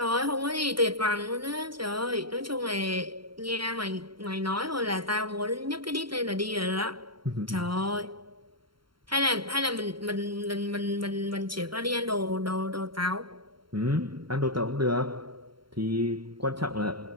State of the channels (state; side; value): late; left; 0.73 ms